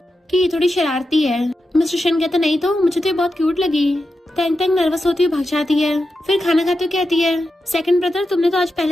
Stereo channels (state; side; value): normal; both; correlation 0.89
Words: कि ये थोड़ी शरारती है। मिस्टर शैन कहता नहीं तो, मुझे तो ये बहुत क्यूट लगी। तेंग तेंग नर्वस होती हुई भाग जाती है। फिर खाना खाते हुए कहती है सेकंड ब्रदर, तुमने तो आज